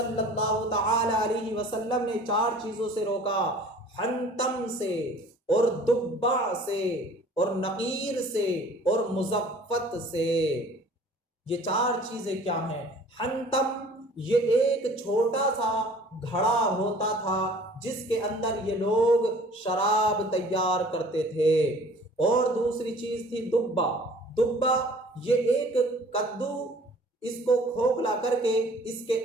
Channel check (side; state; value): both; normal; correlation 0.50